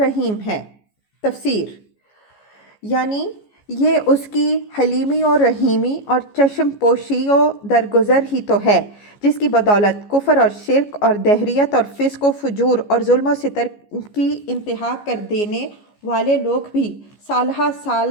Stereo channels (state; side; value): late; right; 14 ms